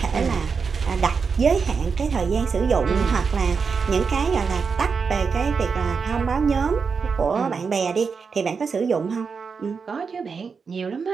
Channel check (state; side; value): quieter; left; 5.4 dB